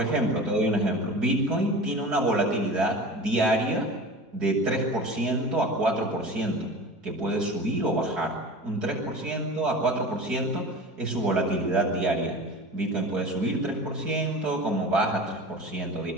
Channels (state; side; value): normal; both; correlation 0.35